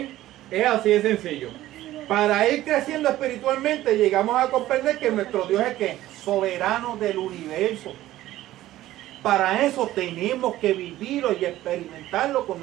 Es así de sencillo. Para ir creciendo espiritualmente llegamos a comprender que nuestro Dios es ¿qué? Soberano del universo. Para eso tenemos que vivirlo y experimentarlo con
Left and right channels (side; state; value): left; quieter; 14.9 dB